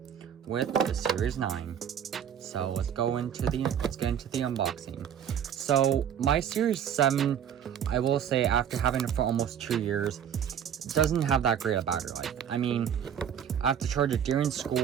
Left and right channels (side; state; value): left; quieter; 8.8 dB